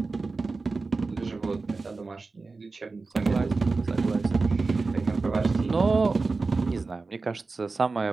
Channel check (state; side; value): quieter; left; 3.9 dB